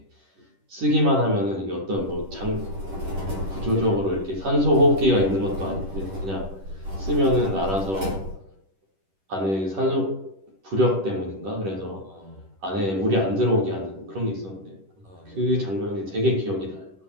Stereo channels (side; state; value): left; late; 10 ms